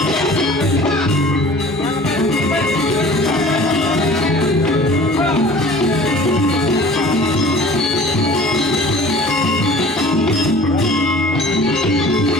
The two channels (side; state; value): both; normal; correlation 0.46